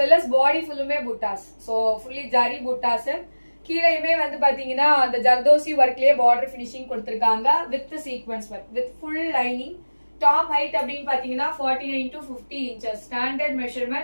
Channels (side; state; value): both; inverted; correlation -1.00